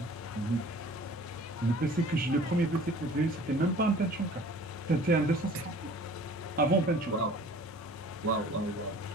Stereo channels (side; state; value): both; normal; correlation 0.48